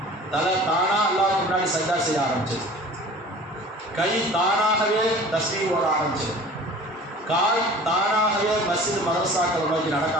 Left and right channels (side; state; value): both; normal; correlation 0.43